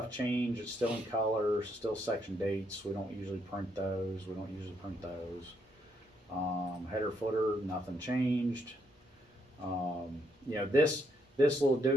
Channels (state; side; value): normal; both; correlation 0.74